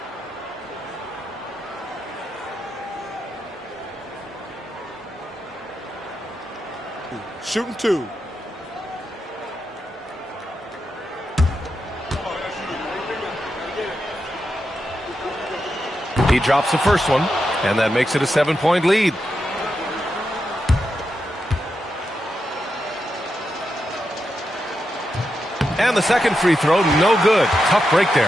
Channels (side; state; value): both; normal; correlation 0.86